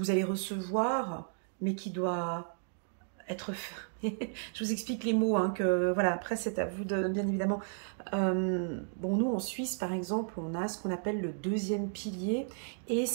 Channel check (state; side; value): silent; left; digital silence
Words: allez recevoir, mais qui doit être... Je vous explique les mots, hein, que voilà, après c'est à vous de, bien évidemment. Bon, nous en Suisse, par exemple, on a ce qu'on appelle le deuxième pilier, et